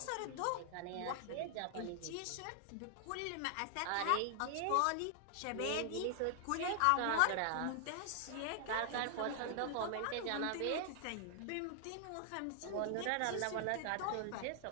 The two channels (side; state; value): both; different; correlation 0.00